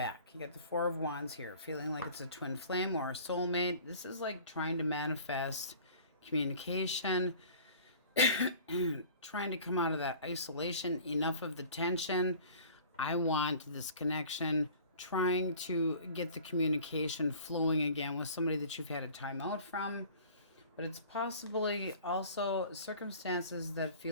you got the Four of Wands here, feeling like it's a twin flame or a soulmate. This is like trying to manifest communication, trying to come out of that isolation, enough of the tension. I want this connection, trying to get the communication flowing again with somebody that you've had a time out from. but it's possibly also circumstances that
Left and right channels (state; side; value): inverted; both; correlation -0.46